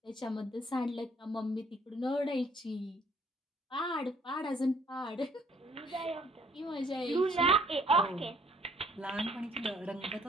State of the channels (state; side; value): normal; both; correlation 0.62